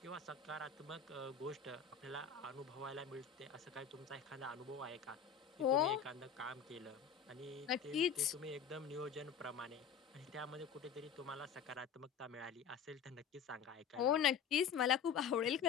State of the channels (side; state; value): right; quieter; 7.1 dB